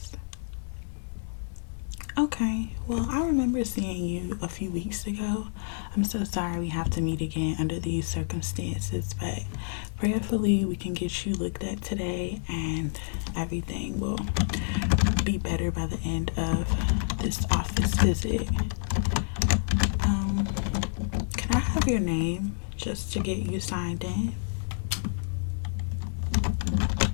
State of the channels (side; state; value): right; silent; digital silence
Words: Okay, well, I remember seeing you a few weeks ago. I'm so sorry we have to meet again under these circumstances, but prayerfully we can get you looked at today and everything will be better by the end of this office visit. Can I have your name just to get you signed in?